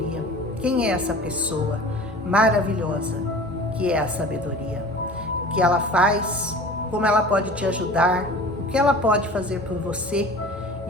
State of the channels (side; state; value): both; normal; correlation 0.40